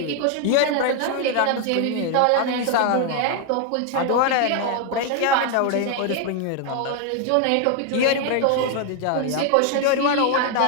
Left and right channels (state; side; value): different; both; correlation 0.01